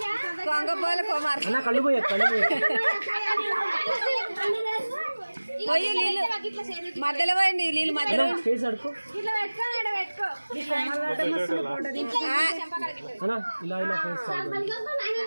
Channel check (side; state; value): both; inverted; correlation -1.00